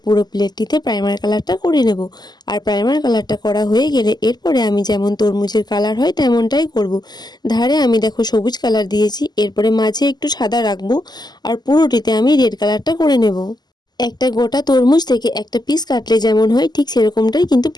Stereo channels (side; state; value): right; late; 0.20 ms